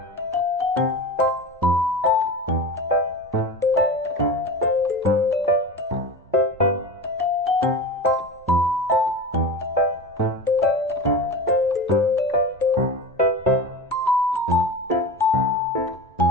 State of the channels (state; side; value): normal; both; correlation 0.30